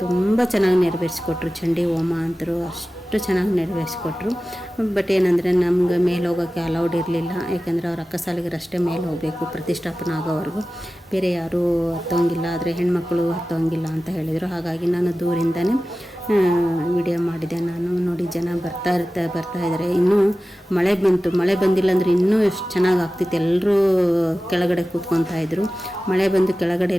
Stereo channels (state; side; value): normal; both; correlation 0.95